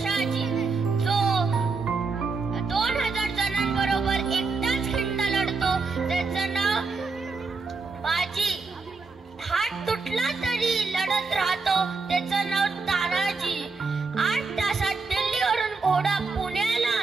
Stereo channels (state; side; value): quieter; left; 4.2 dB